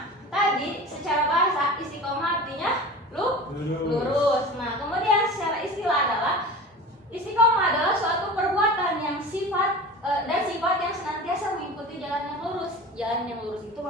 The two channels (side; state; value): both; normal; correlation 0.35